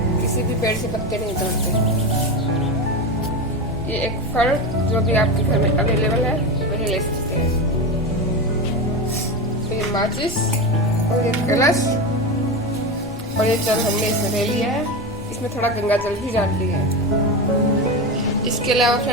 किसी भी पेड़ से पत्ते नहीं तोड़ते। ये एक फल जो भी आपके घर में अवेलेबल है वही ले सकते हैं। तो ये माचिस और ये कलश और ये जल हमने इसमें ले लिया है। इसमें थोड़ा गंगा जल भी डाल लिया है। इसके अलावा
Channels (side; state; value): both; normal; correlation 0.20